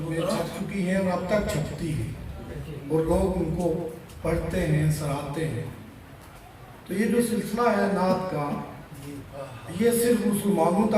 میں چھپ چکی ہیں اور اب تک چھپتی ہیں، اور لوگ ان کو پڑھتے ہیں، سراہتے ہیں۔ تو یہ جو سلسلہ ہے نعت کا، یہ صرف مسلمانوں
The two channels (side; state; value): both; identical; correlation 1.00